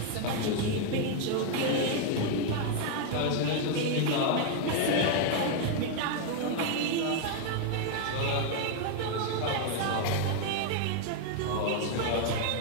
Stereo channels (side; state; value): both; different; correlation 0.01